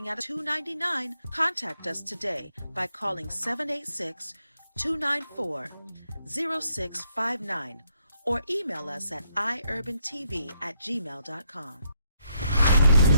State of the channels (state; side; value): inverted; both; correlation -0.75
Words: at $2.99. Contact us today by calling 786-294-0659 or email us at EYEURBANTV@gmail.com.